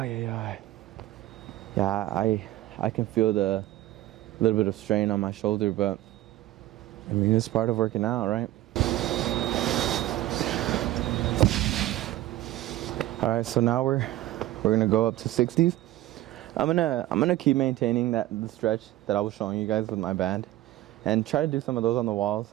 I can feel the little bit of strain on my shoulder, but I mean, it's part of working out, right? All right, so now we're gonna go up to 60s. I'm gonna keep maintaining the stretch that I was showing you guys with my band, and try to do some of those on the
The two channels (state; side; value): quieter; left; 15.7 dB